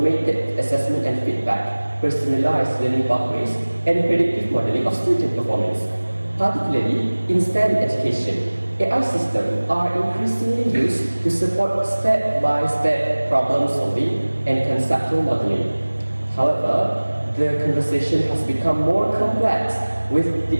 assessment and feedback, personalized learning pathways, and predictive modeling of student performance. Particularly in STEM education, AI systems are increasingly used to support step-by-step problem solving and conceptual modeling. However, the conversation has become more complex with the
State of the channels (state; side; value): inverted; both; correlation -1.00